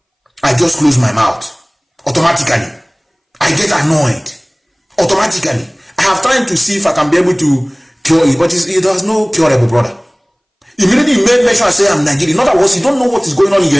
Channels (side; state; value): both; identical; correlation 1.00